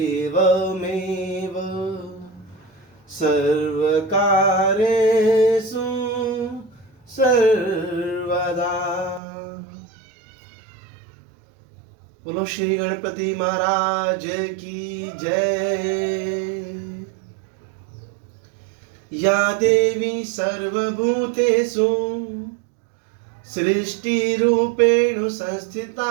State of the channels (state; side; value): drops out; left; at 9.2 s